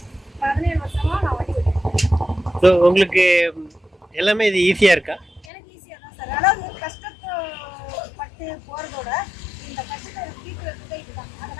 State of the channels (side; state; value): right; drops out; at 5.5 s